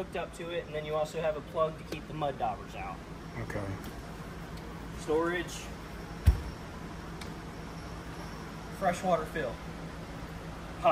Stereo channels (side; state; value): both; identical; correlation 1.00